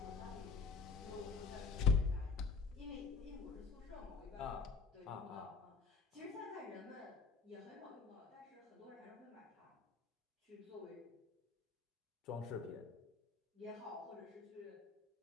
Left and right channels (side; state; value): right; quieter; 4.8 dB